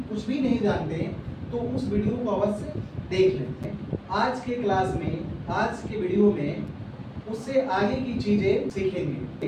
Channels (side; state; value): both; identical; correlation 1.00